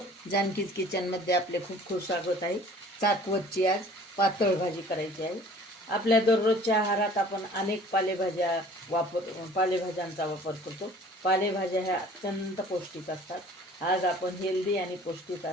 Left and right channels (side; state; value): both; normal; correlation 0.50